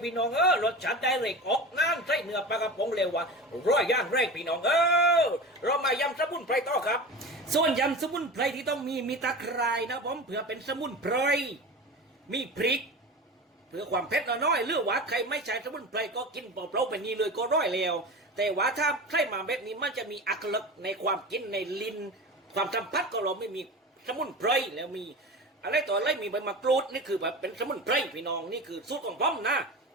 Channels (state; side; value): normal; both; correlation 0.30